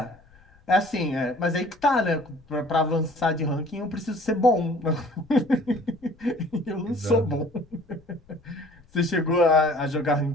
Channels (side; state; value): left; noise; rumble, 28 dB below the sound